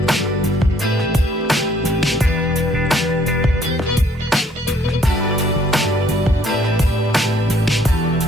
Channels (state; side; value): normal; both; correlation 0.63